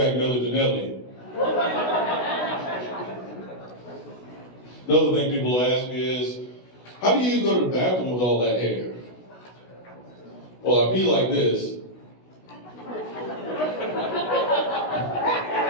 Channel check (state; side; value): late; right; 16 ms